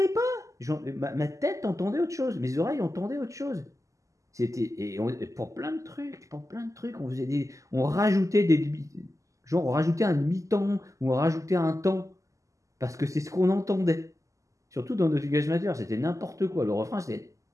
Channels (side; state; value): left; late; 0.16 ms